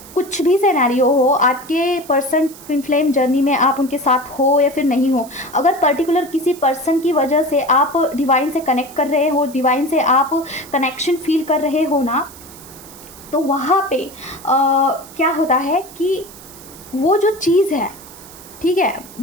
कुछ भी सिनेरियो हो, आपके पर्सन ट्विन फ्लेम जर्नी में आप उनके साथ हो या फिर नहीं हो, अगर पर्टिकुलर किसी पर्सन की वजह से आप डिवाइन से कनेक्ट कर रहे हो, डिवाइन से आप कनेक्शन फील कर रहे हो ना, तो वहाँ पे क्या होता है कि वो जो चीज़ है, ठीक है,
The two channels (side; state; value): right; noise; hiss, 19 dB below the sound